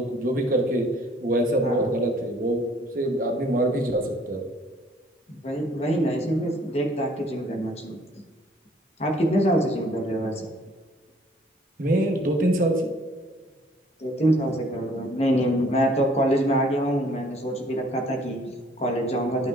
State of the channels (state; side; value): normal; both; correlation 0.58